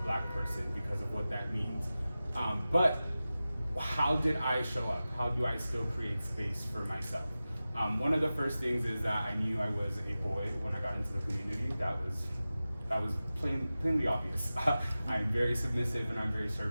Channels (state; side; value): inverted; both; correlation -0.95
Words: person because of what that means. But how did I show up? How do I still create space for myself? One of the first things is that I knew I was a boy when I got into the community. That was plainly obvious. I'm very submissive and I'm very